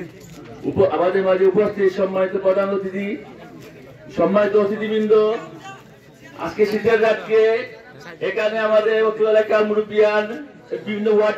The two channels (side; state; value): both; identical; correlation 1.00